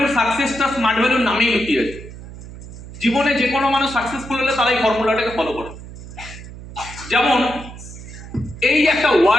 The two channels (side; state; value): right; noise; hum, 14 dB below the sound